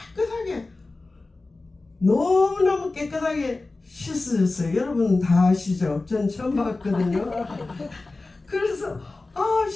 너무너무 깨끗하게 씻어졌어요. 여러분은 다 아시죠? 전 처음 봤거든요. 그래서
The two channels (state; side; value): quieter; right; 3.3 dB